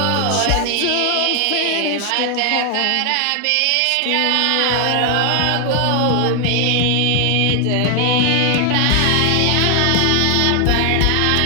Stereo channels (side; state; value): both; different; correlation 0.00